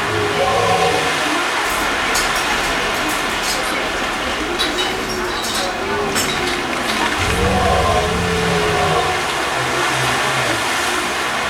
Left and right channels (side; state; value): both; identical; correlation 1.00